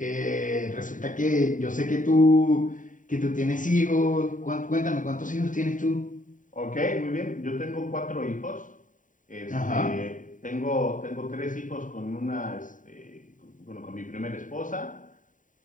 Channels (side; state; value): right; late; 0.38 ms